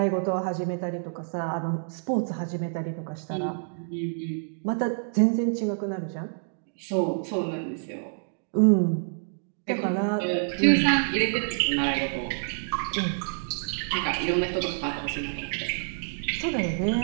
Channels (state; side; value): silent; left; digital silence